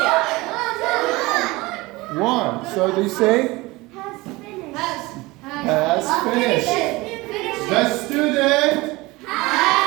1. So do you say? Has finished. The student.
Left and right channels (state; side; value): quieter; left; 21.7 dB